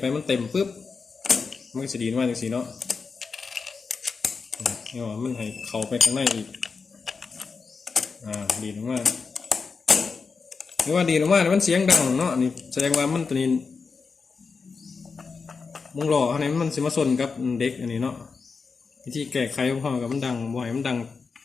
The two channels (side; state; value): right; quieter; 5.0 dB